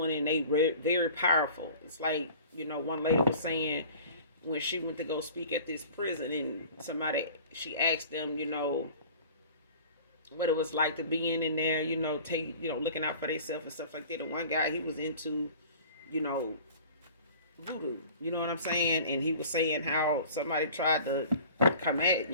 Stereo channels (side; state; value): both; inverted; correlation -0.45